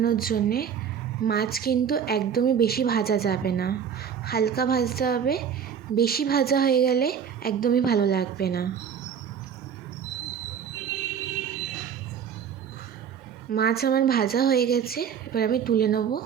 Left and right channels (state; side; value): quieter; left; 7.8 dB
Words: জন্যে মাছ কিন্তু একদমই বেশি ভাজা যাবে না, হালকা ভাজতে হবে। বেশি ভাজা হয়ে গেলে একদমই ভালো লাগবে না। মাছ আমার ভাজা হয়ে গেছে, এবার আমি তুলে নেব।